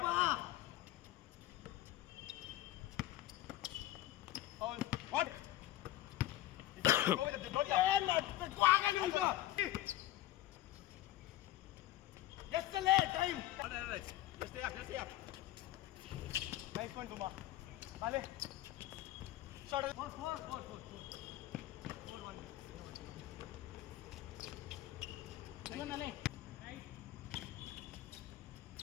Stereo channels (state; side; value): quieter; right; 15.0 dB